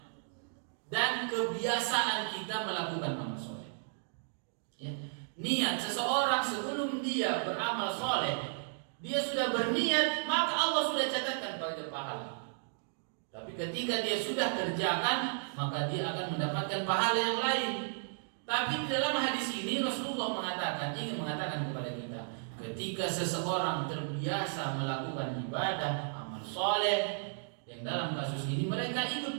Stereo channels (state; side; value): silent; left; digital silence